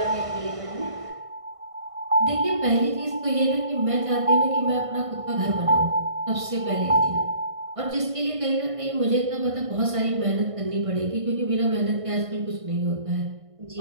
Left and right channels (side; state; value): left; late; 1.5 ms